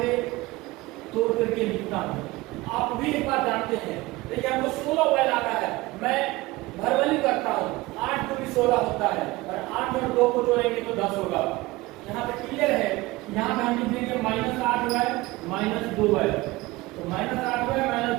तोड़ करके लिखता हूँ। आप भी एक बार जानते हैं, देखिए हमको 16y लाना है, मैं भरवली करता हूँ, 8 को भी 16 होता है और 8 में 2 को जोड़ेंगे तो 10 होगा। यहाँ पे क्लियर है। यहाँ पे हम लिख देंगे -8y -2y, तो -8y -2y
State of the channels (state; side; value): quieter; left; 20.4 dB